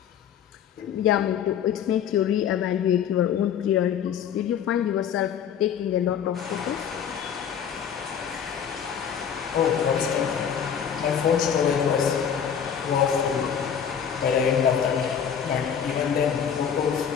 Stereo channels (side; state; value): right; quieter; 8.2 dB